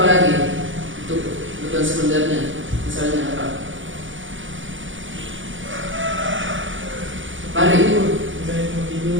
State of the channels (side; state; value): left; late; 0.56 ms